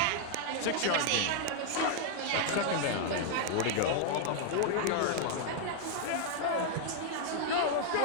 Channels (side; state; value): both; different; correlation 0.00